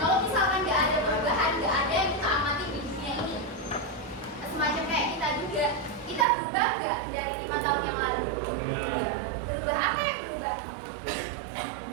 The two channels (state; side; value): drops out; left; at 6.2 s